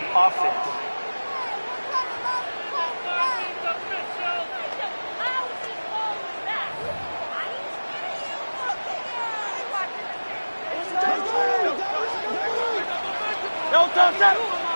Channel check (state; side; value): inverted; both; correlation -1.00